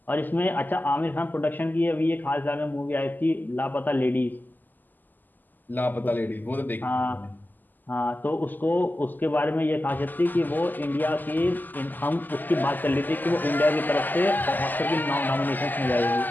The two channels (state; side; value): late; right; 0.087 ms